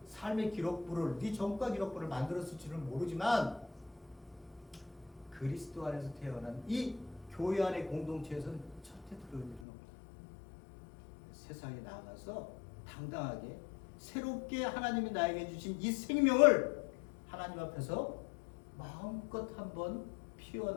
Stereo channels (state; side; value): drops out; right; at 9.7 s